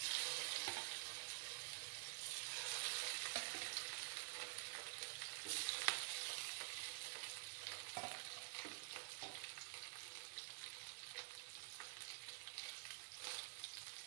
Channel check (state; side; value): silent; left; digital silence